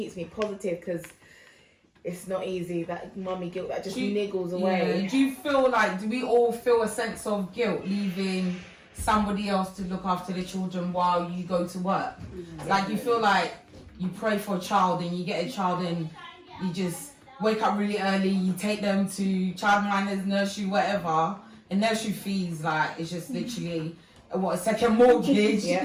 me positive, because it's not easy, that mummy guilt that just niggles away. Do you feel like, do we all feel a sense of guilt leaving somebody else to look after the children while you go to work? Like, you feel like you pray for a child and you get a child and you just wake up really early, you take them to childminders, nursery, whatever, and nursery fees, like, it's just literally a second mortgage.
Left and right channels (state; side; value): identical; both; correlation 1.00